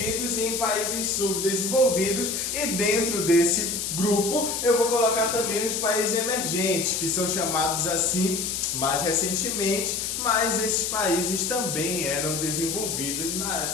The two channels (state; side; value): noise; left; hiss, 3 dB below the sound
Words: e em países subdesenvolvidos, e dentro desse grupo eu vou colocar também os países emergentes, que são chamados assim mais recentemente, mas esses países também eram subdesenvolvidos,